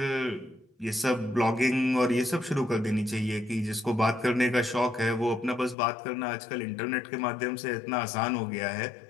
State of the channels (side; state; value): right; drops out; at 5.8 s